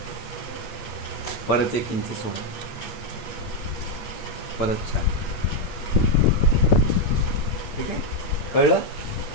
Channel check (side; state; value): right; late; 8.7 ms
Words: परत 1 इंच सोडा. परत 4. ठीक आहे, कळलं?